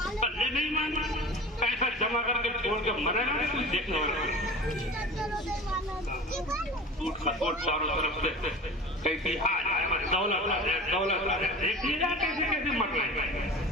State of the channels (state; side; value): normal; both; correlation 0.37